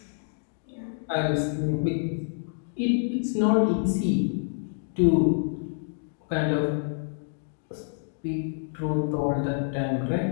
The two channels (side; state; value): right; silent; digital silence